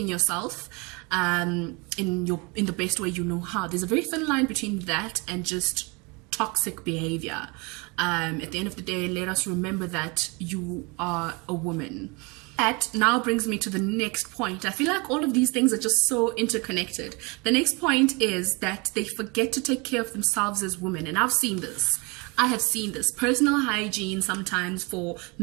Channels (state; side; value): quieter; left; 28.5 dB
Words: yourself in the best way you know how. There's a very thin line between that and just toxic behavior. At the end of the day, let us remember that you are a woman. That now brings me to the next point. I feel like all of these things are just so interconnected. The next point is that they forget to take care of themselves as women. And I've seen this. I have seen this. Personal hygiene sometimes for